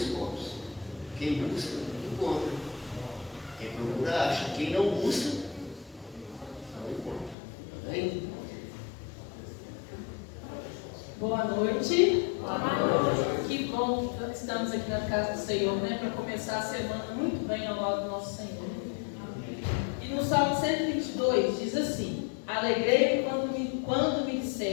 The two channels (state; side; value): drops out; right; at 7.4 s